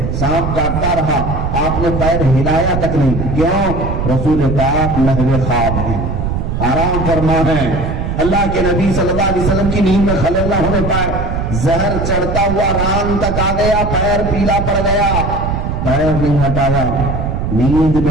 سانپ کاٹتا رہا, آپ نے پیر ہلایا تک نہیں. کیوں؟ رسول پاک لہو خواب ہیں, آرام فرما ہے. اللہ کے نبی صلی اللہ علیہ وسلم کی نیند میں خلل نہ ہونے پائے. زہر چڑھتا ہوا ران تک آ گیا, پیر پیلا پڑ گیا, پیر نہیں ہٹایا, نیند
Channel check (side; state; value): right; noise; rumble, 2 dB below the sound